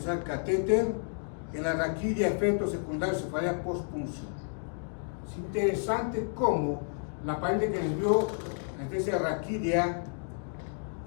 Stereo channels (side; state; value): right; silent; 57 dB below the other